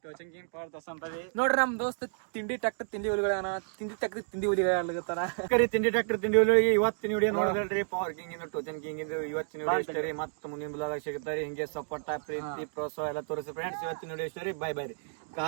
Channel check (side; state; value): left; silent; digital silence